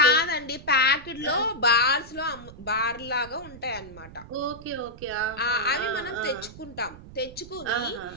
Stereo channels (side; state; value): right; noise; rumble, 17 dB below the sound